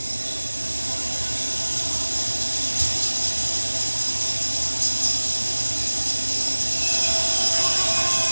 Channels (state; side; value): inverted; both; correlation -1.00